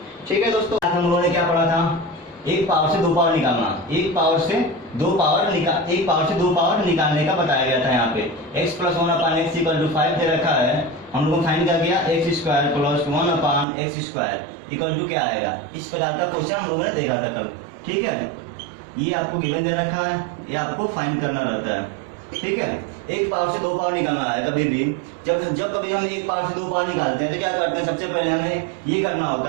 ठीक है दोस्तों, आज हम लोगों ने क्या पढ़ा था? एक पावर से दो पावर निकालना, एक पावर से दो पावर निकालने का बताया गया था। यहाँ पे x + 1/x = 5 दे रखा है। हम लोगों ने फाइंड क्या किया? x² + 1/x² = क्या आएगा? इस प्रकार का क्वेश्चन हम लोगों ने देखा था कल। ठीक है, ये आपको गिवन दे रखा है, ये आपको फाइंड करना रहता है। ठीक है, एक पावर से दो पावर निकालना है। कभी भी जब कभी हम एक पावर से दो पावर निकालते हैं तो क्या करते हैं? सबसे पहले हमें ये करना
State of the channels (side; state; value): left; drops out; at 13.7 s